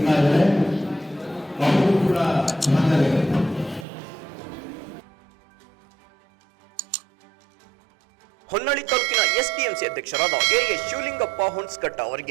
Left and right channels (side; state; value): left; drops out; at 3.9 s